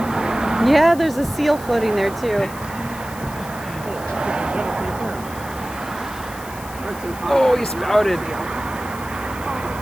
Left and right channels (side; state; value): left; noise; hiss, 17 dB below the sound